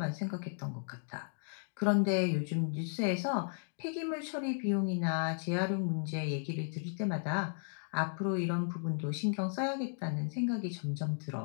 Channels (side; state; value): right; silent; digital silence